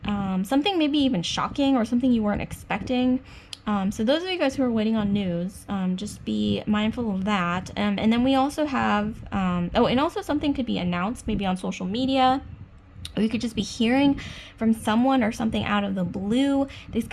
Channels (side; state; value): both; identical; correlation 1.00